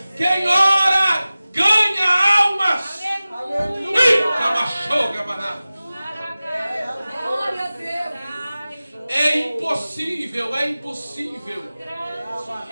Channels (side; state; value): both; inverted; correlation -0.97